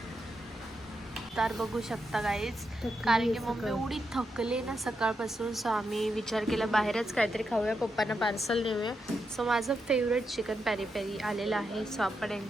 तर बघू शकता गाईज कारण की मम्मी एवढी थकले ना सकाळपासून. सो आम्ही विचार केला बाहेरच काहीतरी खाऊया. पप्पांना पार्सल नेऊया. सो माझं फेवरेट चिकन पेरी पेरी आलेलं आहे. सो आपण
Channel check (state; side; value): normal; both; correlation 0.84